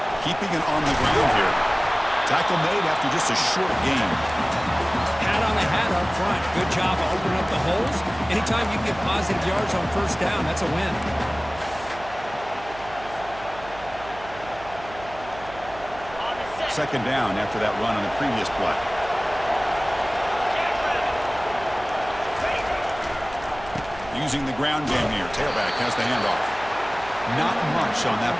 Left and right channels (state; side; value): noise; right; hum, 17 dB below the sound